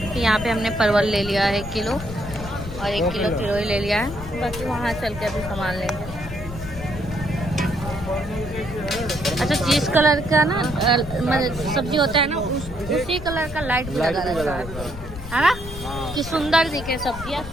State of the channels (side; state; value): left; noise; rumble, 11 dB below the sound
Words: यहाँ पे हमने परवल ले लिया है 1 किलो और 1 किलो चिड़ोई ले लिया है, बाकी वहाँ चल के अभी सामान लेंगे। अच्छा, जिस कलर का ना सब्जी होता है ना, उसी कलर का लाइट भी लगा रहता है ना, कि सुंदर दिखे सब्जियाँ,